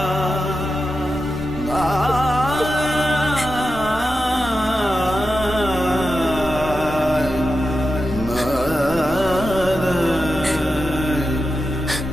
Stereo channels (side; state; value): both; normal; correlation 0.90